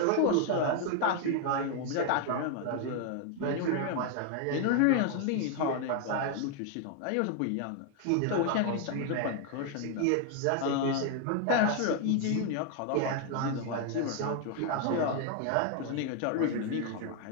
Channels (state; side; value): different; both; correlation 0.00